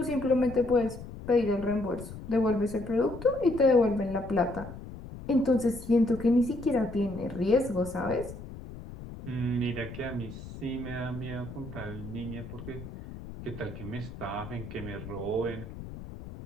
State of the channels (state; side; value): noise; left; rumble, 12 dB below the sound